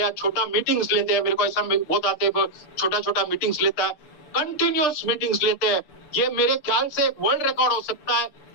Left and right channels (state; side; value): late; right; 6.9 ms